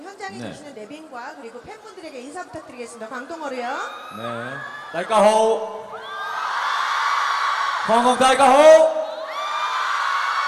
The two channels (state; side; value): identical; both; correlation 1.00